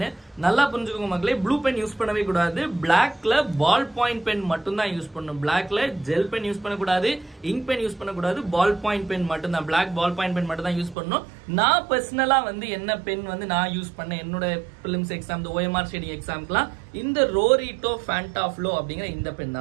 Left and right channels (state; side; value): drops out; left; at 11.0 s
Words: நல்லா புரிஞ்சுக்கோங்க மக்களே, ப்ளூ பென் யூஸ் பண்ணவே கூடாது. பிளாக்ல பால் பாயிண்ட் பென் மட்டும் தான் யூஸ் பண்ணணும். பிளாக்ல ஜெல் பென் யூஸ் பண்ணக்கூடாது, இங்க் பென் யூஸ் பண்ணக்கூடாது, பால் பாயிண்ட் பென் மட்டும் தான், பிளாக் பால் பாயிண்ட் பென் மட்டும் தான் யூஸ் பண்ணணும். நான் பர்சனலா என்ன பென் நான் யூஸ் பண்ணேன் என்னோட பிலிம்ஸ் எக்ஸாம், OMR ஷேடிங் எக்ஸாம்க்குலாம் இந்த ரோரிட்டோ ஃபேண்டாஃப்ளோ அப்படிங்கிற இந்த பென்